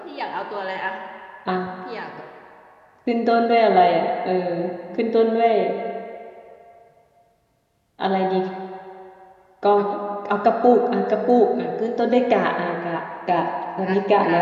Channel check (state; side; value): identical; both; correlation 1.00